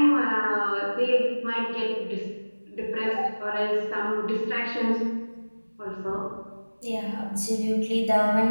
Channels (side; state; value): both; inverted; correlation -1.00